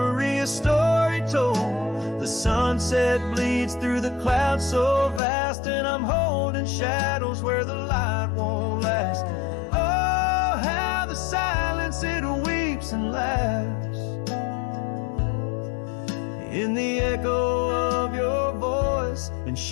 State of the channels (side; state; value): right; drops out; at 5.2 s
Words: a story told. The sunset bleeds through the clouds so vast, and I'm holding shadows where the light won't last. Oh, how the silence it weeps and laughs in the echo of your voice and